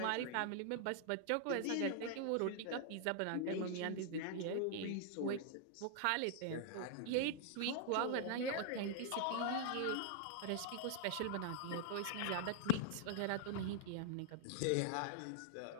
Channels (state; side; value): different; both; correlation -0.01